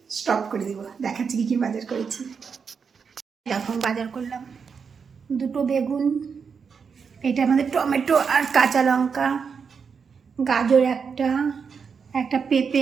স্টপ করে দেবো, দেখাচ্ছি কী বাজার করেছি। এখন বাজার করলাম 2টো বেগুন, এটা আমাদের টমেটো আর কাঁচা লঙ্কা, গাজর একটা পেঁপে,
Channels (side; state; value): left; quieter; 6.0 dB